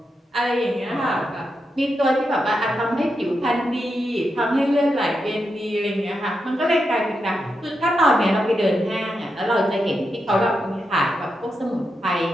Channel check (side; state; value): both; normal; correlation 0.86